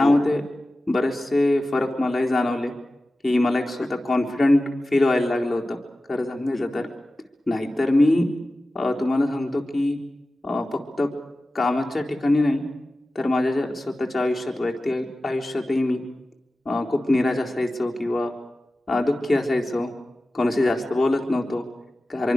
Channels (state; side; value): normal; both; correlation 0.95